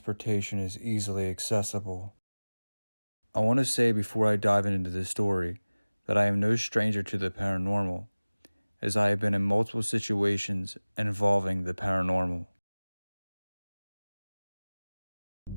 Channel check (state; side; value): inverted; both; correlation -1.00